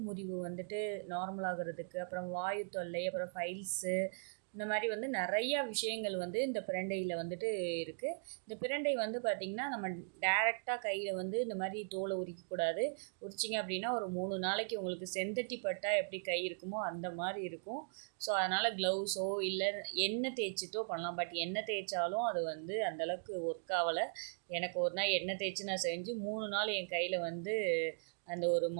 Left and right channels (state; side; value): silent; left; digital silence